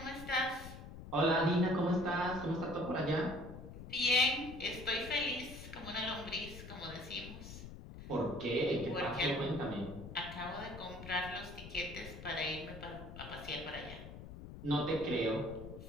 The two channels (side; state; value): left; noise; rumble, 12 dB below the sound